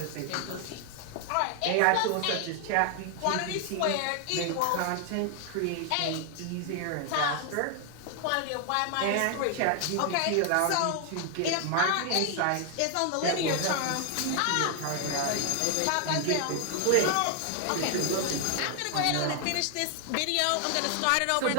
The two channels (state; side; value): different; both; correlation 0.00